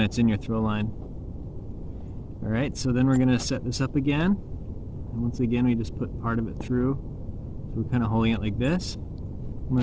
in your throw line. Alright, so then we're going to set this up again, and once again we just put part of it through, so we're kind of holding it like this. I'm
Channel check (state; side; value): identical; both; correlation 1.00